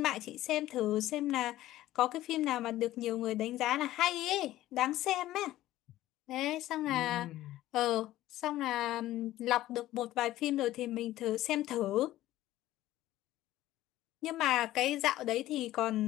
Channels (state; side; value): quieter; right; 15.0 dB